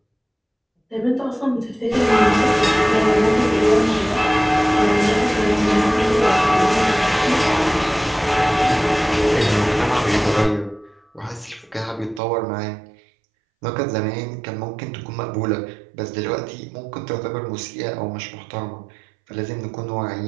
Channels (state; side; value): drops out; left; at 12.2 s